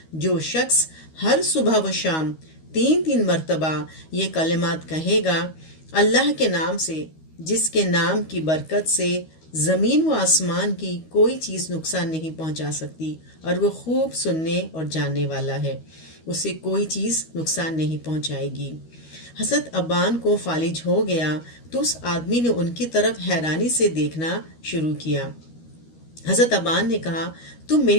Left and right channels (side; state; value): right; late; 13 ms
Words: जो शख्स हर सुबह व शाम 3 मरतबा ये कलिमात कहेगा, अल्लाह के नाम से जिसके नाम की बरकत से ज़मीन व आसमान की कोई चीज़ नुकसान नहीं पहुंचा सकती और वो खूब सुनने और जानने वाला है, उसे कोई चीज़ नुकसान नहीं पहुंचाएगी। हज़रत अब्बान को फालिज हो गया तो उस आदमी ने उनकी तरफ हैरानी से देखना शुरू किया। हज़रत अब्बान ने कहा, तुम